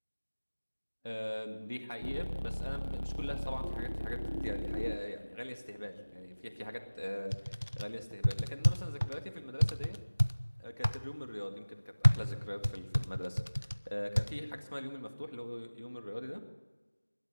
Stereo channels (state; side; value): inverted; both; correlation -1.00